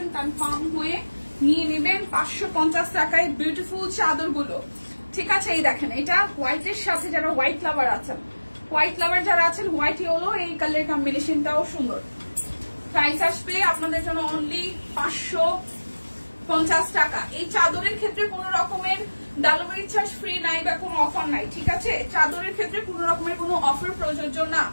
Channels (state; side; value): inverted; both; correlation -1.00